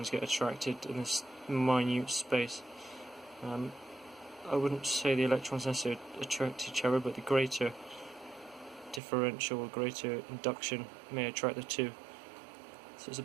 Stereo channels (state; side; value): drops out; left; at 9.0 s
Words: get attracted in this minute space. I wouldn't say the electrons necessarily attract each other, but the greater differential or greater induction may attract the two. So it's a